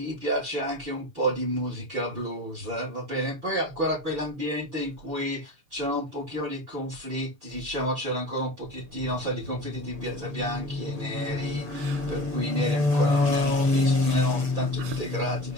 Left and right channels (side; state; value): left; late; 6.9 ms